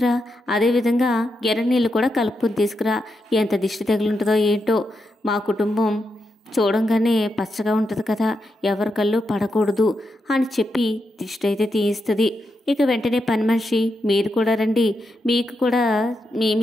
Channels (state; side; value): normal; both; correlation 0.85